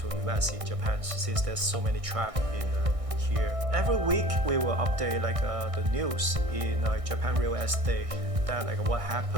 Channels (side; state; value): left; late; 1.6 ms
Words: invest in Japan since there's so many traps in here. Every week we will update the news in Japan real estate, that what